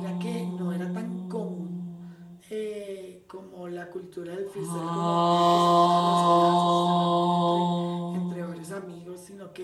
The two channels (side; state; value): both; identical; correlation 1.00